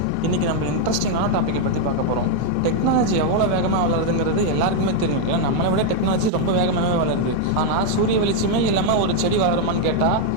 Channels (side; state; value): both; different; correlation 0.00